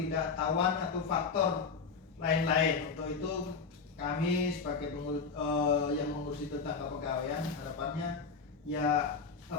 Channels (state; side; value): quieter; right; 5.1 dB